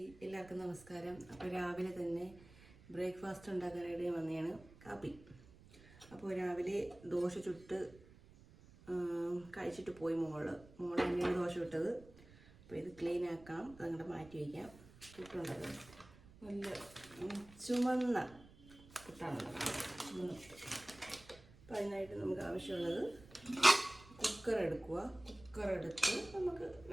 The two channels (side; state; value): right; noise; rumble, 22 dB below the sound